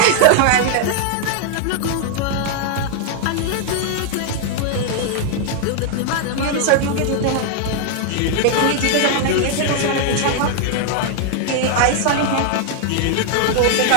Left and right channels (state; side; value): different; both; correlation 0.00